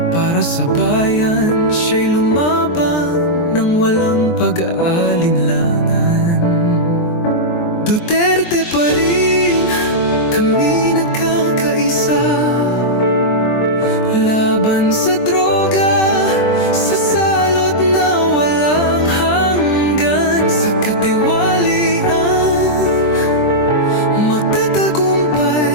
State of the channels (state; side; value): late; right; 23 ms